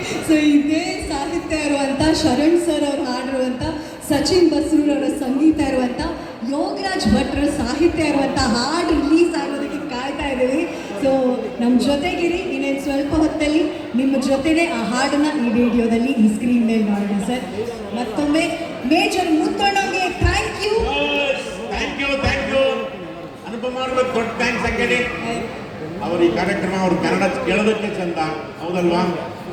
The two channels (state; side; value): identical; both; correlation 1.00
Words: ಸೊ ಇದೇ ಸಾಹಿತ್ಯ ಇರುವಂತ ಶರಣ್ ಸರ್ ಅವ್ರು ಹಾಡಿರುವಂತ ಸಚಿನ್ ಬಸ್ರೂರ್ ಅವರ ಸಂಗೀತ ಇರುವಂತ ಯೋಗರಾಜ್ ಭಟ್ರ ಸಾಹಿತ್ಯ ಇರುವಂತ ಹಾಡು ರಿಲೀಸ್ ಆಗೋದಕ್ಕೆ ಕಾಯ್ತಾ ಇದ್ದೀವಿ ಸೊ ನಮ್ಮ ಜೊತೆಗಿರಿ ಇನ್ನೇನು ಸ್ವಲ್ಪ ಹೊತ್ತಲ್ಲಿ ನಿಮ್ಮ ಜೊತೆನೆ ಆ ಹಾಡನ್ನ ಈ ವಿಡಿಯೋದಲ್ಲಿ ಈ ಸ್ಕ್ರೀನ್ ಮೇಲೆ ನೋಡೋಣ ಸರ್ ಮತ್ತೊಮ್ಮೆ ಮೇಜರ್ ಮುತ್ತಣ್ಣಗೆ ಥ್ಯಾಂಕ್ ಯು ಅನುಪಮ ಅವ್ರಿಗೆ ದೊಡ್ಡ ಥ್ಯಾಂಕ್ಸ್ ಹಾಕಿ ಅವ್ರ ಈ ಕಾರ್ಯಕ್ರಮ ಅವ್ರ ಕನ್ನಡ ಕೇಳೋದಕ್ಕೆ ಚಂದ ಹೌದಲ್ವಾ